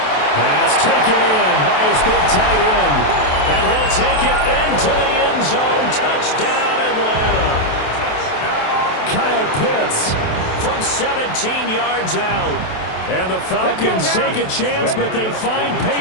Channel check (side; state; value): right; late; 27 ms